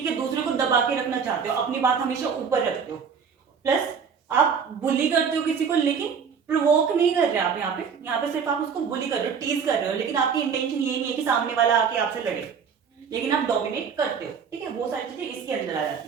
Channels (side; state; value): left; quieter; 6.5 dB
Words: है, दूसरे को दबा के रखना चाहते हो, अपनी बात हमेशा ऊपर रखते हो, प्लस आप बुली करते हो किसी को, लेकिन प्रोवोक नहीं कर रहे आप यहाँ पे सिर्फ आप उसको बुली कर रहे हो, टीज कर रहे हो, लेकिन आपकी इंटेंशन ये नहीं है कि सामने वाला आके आपसे लड़े, लेकिन आप डोमिनेट करते हो, ठीक है। वो सारी चीजें इसके अंदर आ